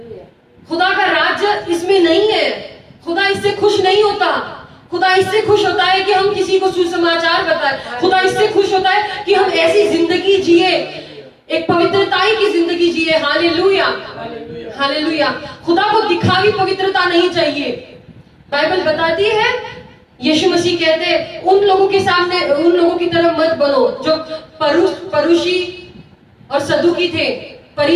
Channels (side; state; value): both; identical; correlation 1.00